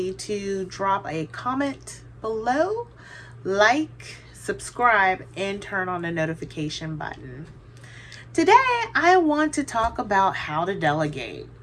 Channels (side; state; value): both; identical; correlation 1.00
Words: to drop a comment below, like, subscribe, and turn on the notification button. Today, I want to talk about how to delegate.